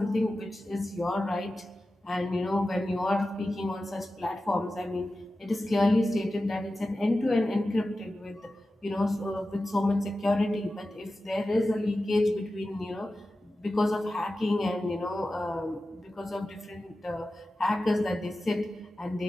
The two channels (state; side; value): normal; both; correlation 0.94